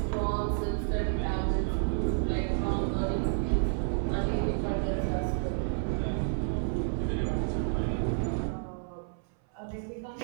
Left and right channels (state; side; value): silent; left; 58 dB below the other